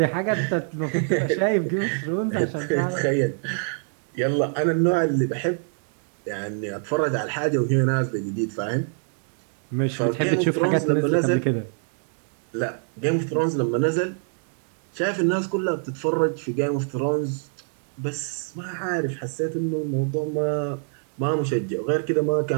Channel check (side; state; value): left; silent; 60 dB below the other